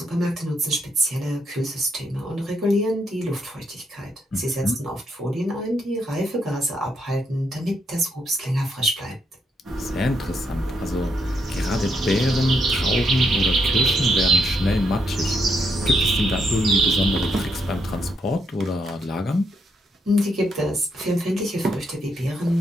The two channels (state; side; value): normal; both; correlation 0.78